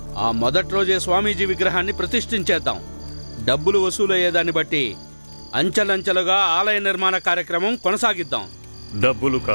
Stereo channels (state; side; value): inverted; both; correlation -1.00